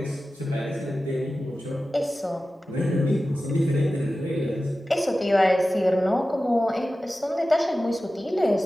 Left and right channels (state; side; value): normal; both; correlation 0.95